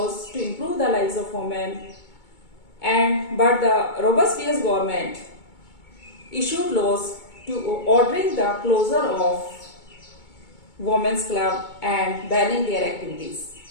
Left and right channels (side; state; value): right; late; 2.2 ms